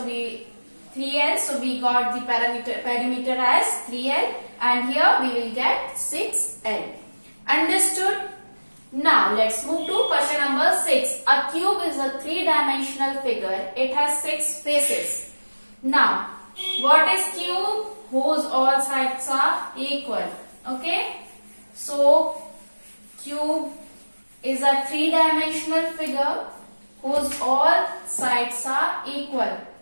so we got the perimeter as 3L, and here we will get 6L. Understood? Now let's move to question number 6. A cube is a 3-dimensional figure. It has 6 faces. Now, what is cube? Whose all sides are equal. Okay? So, cube is a 3-dimensional figure whose all sides are equal.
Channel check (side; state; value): both; inverted; correlation -1.00